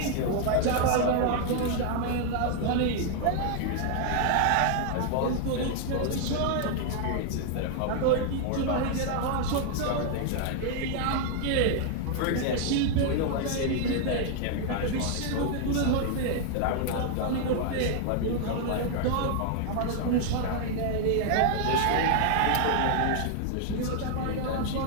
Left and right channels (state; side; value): different; both; correlation 0.00